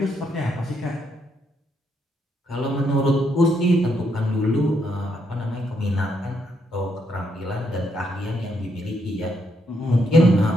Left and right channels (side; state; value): both; normal; correlation 0.76